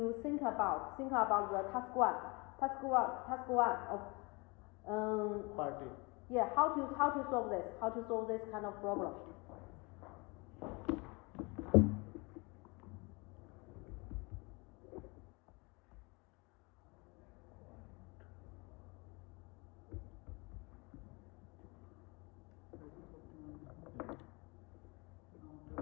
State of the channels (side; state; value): right; quieter; 27.8 dB